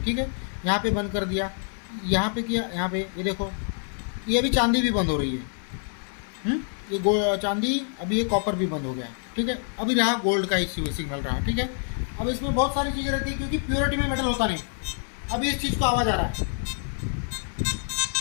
ठीक है, यहाँ पे बंद कर दिया, यहाँ पे किया, यहाँ पे ये देखो, ये अभी चांदी भी बंद हो रही है। ये चांदी, अभी ये कॉपर भी बंद हो गया। ठीक है, अभी रहा गोल्ड का ही सिग्नल रहा। ठीक है, अब इसमें बहुत सारी चीज़ें रहती है, क्योंकि प्योरिटी में मेटल होता नहीं। अभी इस चीज़ को आवाज़ आ रहा है,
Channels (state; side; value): silent; right; 56 dB below the other